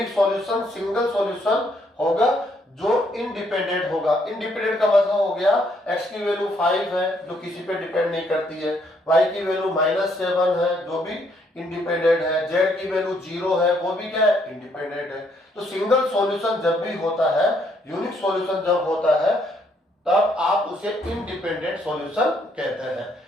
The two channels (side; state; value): both; normal; correlation 0.70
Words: सॉल्यूशन सिंगल सॉल्यूशन होगा जो इंडिपेंडेंट होगा। इंडिपेंडेंट का मतलब हो गया x की वैल्यू 5 है जो किसी पे डिपेंड नहीं करती है, y की वैल्यू -7 है जो भी इंडिपेंडेंट है, z की वैल्यू 0 है वो भी क्या है, इंडिपेंडेंट है। तो सिंगल सॉल्यूशन जब भी होता है, यूनिक सॉल्यूशन जब होता है, तब आप उसे इंडिपेंडेंट सॉल्यूशन कहते हैं।